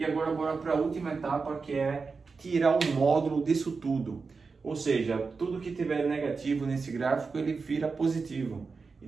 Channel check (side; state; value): left; quieter; 4.6 dB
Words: agora bora para a última etapa, que é tirar o módulo disso tudo. Ou seja, tudo que tiver negativo nesse gráfico, ele vira positivo.